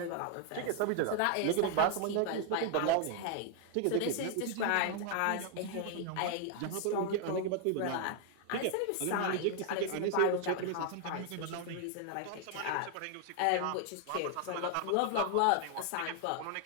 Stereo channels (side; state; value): both; different; correlation 0.00